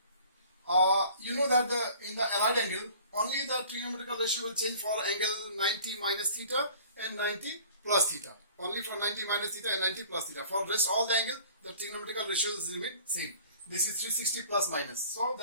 You know that in the allied angle, only the trigonometrical ratio will change for angle 90 minus theta and 90 plus theta. Only for 90 minus theta and 90 plus theta. For rest all the angle, the trigonometrical ratios remain same. This is 360 plus minus. So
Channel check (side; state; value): both; inverted; correlation -0.49